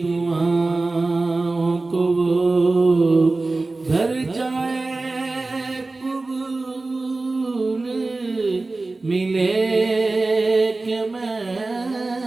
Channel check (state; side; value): quieter; left; 3.3 dB